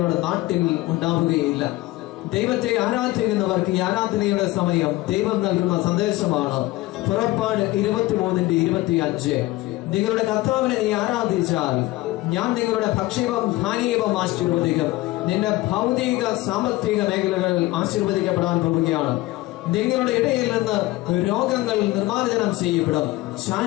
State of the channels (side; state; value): right; quieter; 18.7 dB